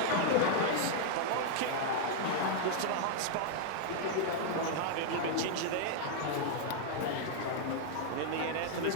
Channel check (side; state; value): both; different; correlation -0.01